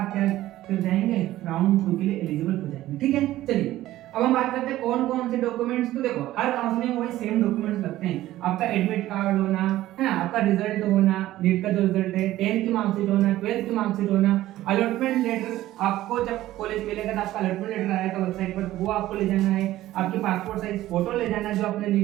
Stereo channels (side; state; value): left; quieter; 15.0 dB